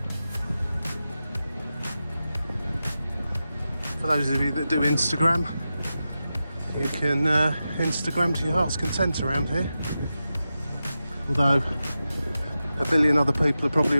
For those of you that do Instagram, you can Instagram to your heart's content around here. Although a billion other people have probably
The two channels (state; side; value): inverted; both; correlation -0.92